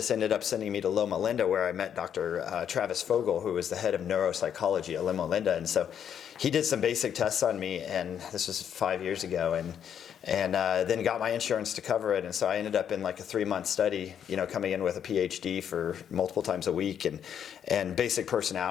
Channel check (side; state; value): right; quieter; 8.8 dB